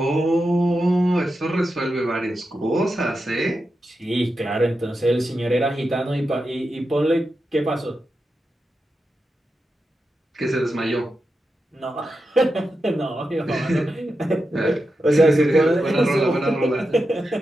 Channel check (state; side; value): normal; both; correlation 0.89